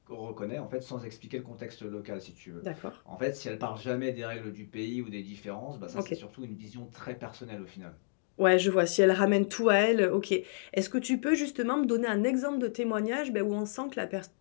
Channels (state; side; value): silent; right; digital silence